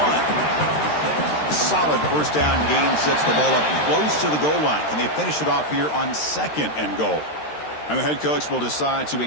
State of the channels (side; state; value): right; late; 13 ms